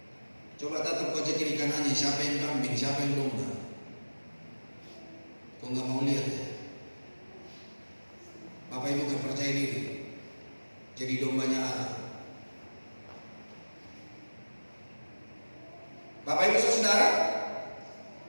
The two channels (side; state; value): both; inverted; correlation -1.00